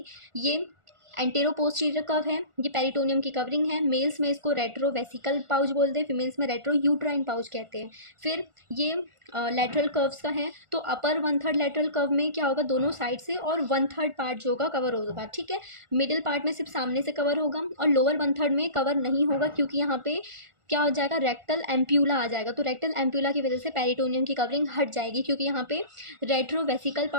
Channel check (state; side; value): late; left; 1.4 ms